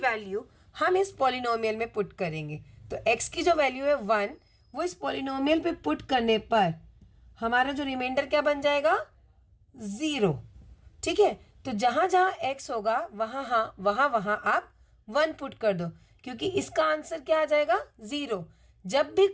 हम इस पॉलिनोमियल में पुट करेंगे। तो x की जो वैल्यू है 1 वो इस पॉलिनोमियल पे पुट करने पर हमारा जो रिमाइंडर क्या बन जाएगा, 0। ठीक है, तो जहाँ जहाँ x होगा वहाँ आप 1 पुट कर दो, क्योंकि इसका आंसर क्या आ जाएगा, 0। जब भी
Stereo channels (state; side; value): identical; both; correlation 1.00